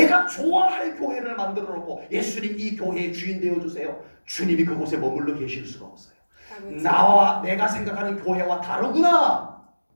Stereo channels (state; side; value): inverted; both; correlation -1.00